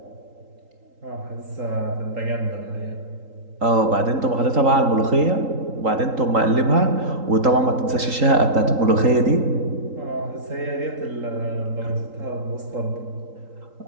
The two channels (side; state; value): left; late; 3.8 ms